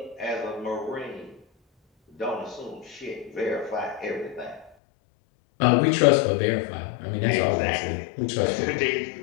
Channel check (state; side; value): drops out; right; at 4.7 s